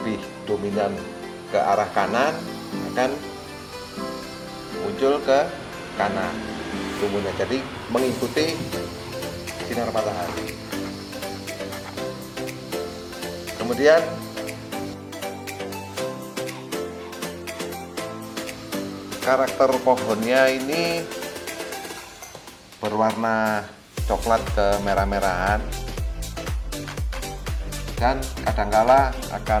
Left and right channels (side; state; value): both; identical; correlation 1.00